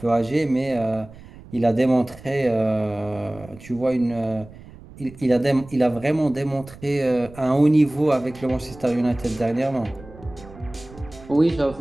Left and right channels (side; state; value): right; noise; rumble, 19 dB below the sound